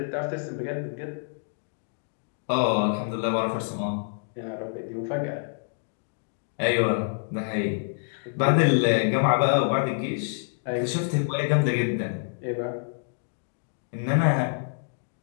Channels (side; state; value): right; silent; digital silence